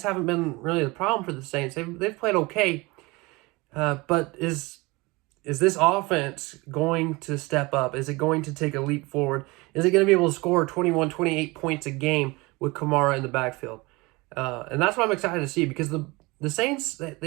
haven't been really the problem for the Saints. They've played okay, but is this offense going to step up? Is it going to take a leap forward? Is it going to be able to score 21, 28 points a game with Kamara in the backfield? And that's what I'm excited to see, because the Saints,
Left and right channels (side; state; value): left; quieter; 23.9 dB